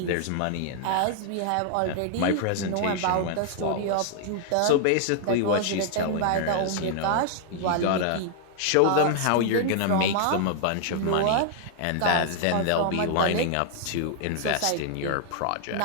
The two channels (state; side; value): different; both; correlation 0.00